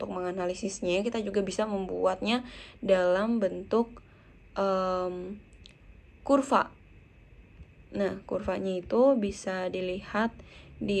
menganalisisnya, kita juga bisa membuatnya dalam bentuk kurva. Nah, kurvanya itu bisa dilihat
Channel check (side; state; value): both; identical; correlation 1.00